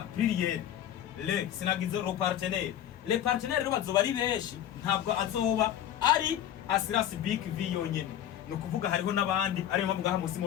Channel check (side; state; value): right; quieter; 11.0 dB